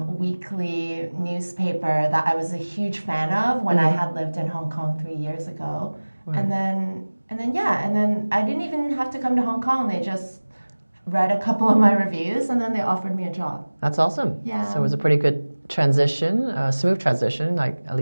weekly newspaper that I was a huge fan of when I had lived in Hong Kong 3 years ago. Right. And then I didn't even have to come to Hong Kong. They just read a couple of my reviews and then they offered me a job. That's awesome. Yeah. So it was a pretty good transition, smooth transition, like at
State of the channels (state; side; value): inverted; both; correlation -1.00